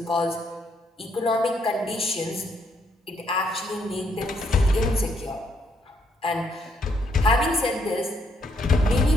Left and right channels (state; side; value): normal; both; correlation 0.73